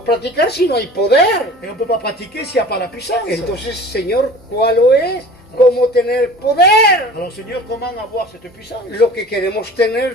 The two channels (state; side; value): normal; both; correlation 0.42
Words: practicar si no hay poder. Et on ne peut pas pratiquer s'il n'y a pas la puissance. Entonces, Señor, ¿cuál es? ¿Cómo tener poder? Alors Seigneur, comment avoir cette puissance? Lo que queremos